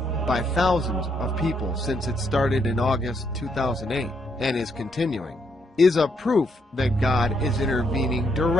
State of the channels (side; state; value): both; normal; correlation 0.75